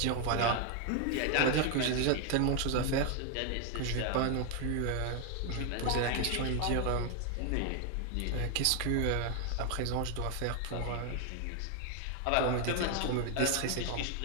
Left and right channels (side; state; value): both; different; correlation 0.01